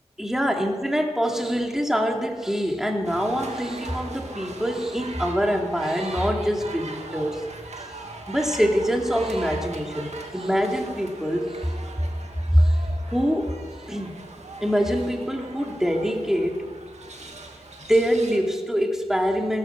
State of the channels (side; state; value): both; normal; correlation 0.92